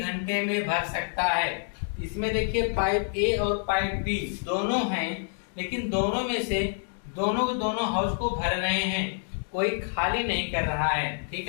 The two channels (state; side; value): silent; right; digital silence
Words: में भर सकता है? इसमें देखिए पाइप ए और पाइप बी दोनों हैं, लेकिन दोनों में से दोनों हौज को भर रहे हैं, कोई खाली नहीं कर रहा है।